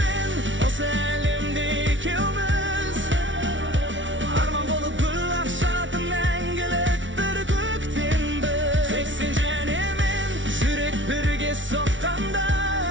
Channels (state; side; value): late; left; 0.56 ms